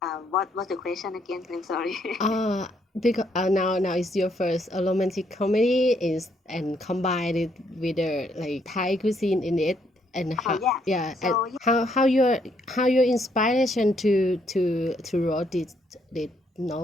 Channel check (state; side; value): normal; both; correlation 0.72